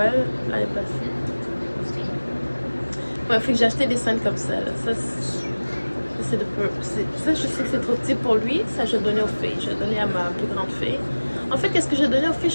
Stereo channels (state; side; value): inverted; both; correlation -1.00